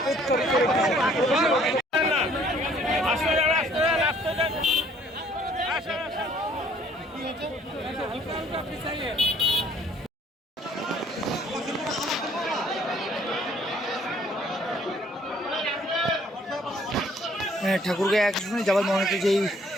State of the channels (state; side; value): normal; both; correlation 0.60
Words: ঠাকুরগাঁও এক আসনে যাবার মনোনীত যেই